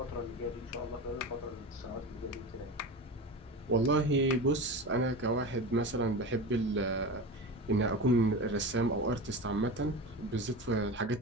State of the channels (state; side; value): normal; both; correlation 0.26